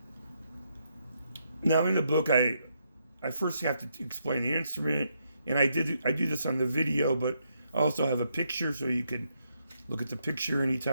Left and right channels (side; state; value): both; inverted; correlation -0.78